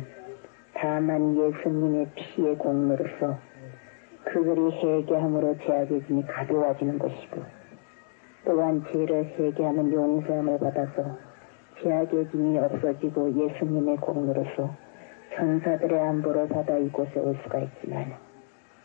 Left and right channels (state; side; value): silent; right; digital silence